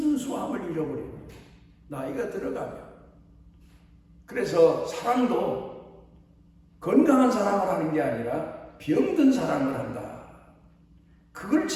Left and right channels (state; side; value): identical; both; correlation 1.00